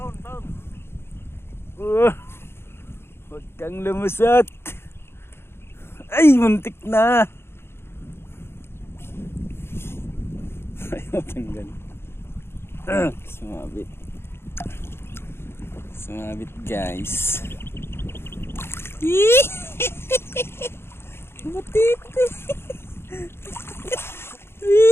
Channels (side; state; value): right; late; 0.12 ms